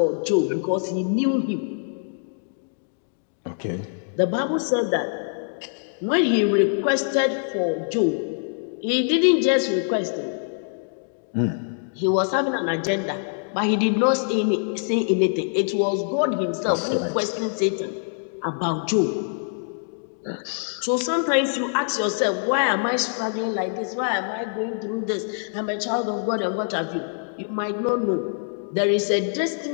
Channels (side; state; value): right; silent; 62 dB below the other